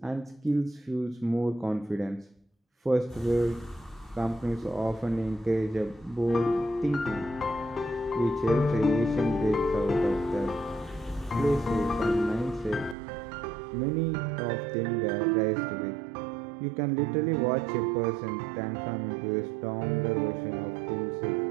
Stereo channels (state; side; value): drops out; left; at 13.0 s